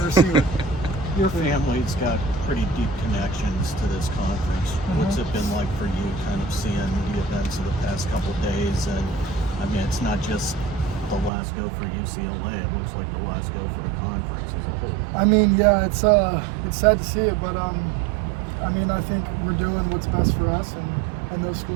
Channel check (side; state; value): left; drops out; at 11.3 s